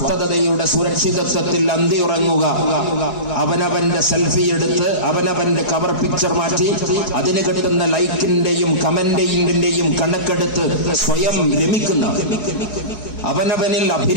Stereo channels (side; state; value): right; late; 4.7 ms